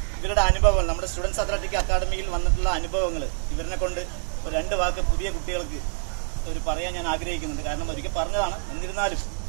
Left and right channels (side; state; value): left; silent; 61 dB below the other